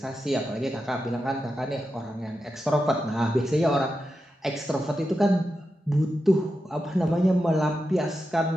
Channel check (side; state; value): both; normal; correlation 0.89